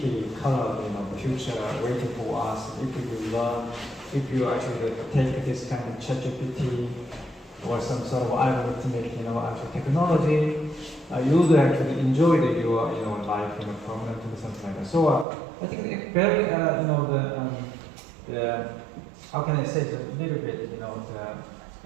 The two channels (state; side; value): drops out; left; at 15.2 s